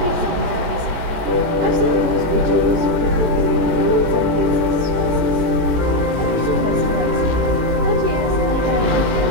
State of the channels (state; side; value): late; left; 18 ms